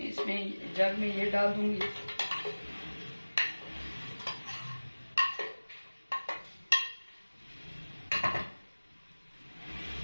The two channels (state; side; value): inverted; both; correlation -1.00